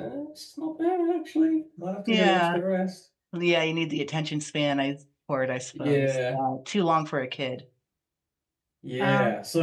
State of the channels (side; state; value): both; identical; correlation 1.00